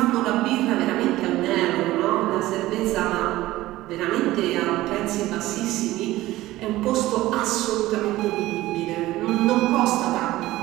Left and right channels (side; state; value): left; quieter; 16.8 dB